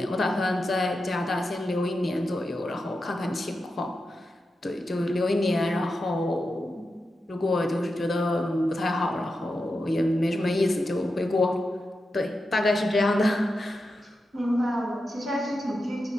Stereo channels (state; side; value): normal; both; correlation 0.89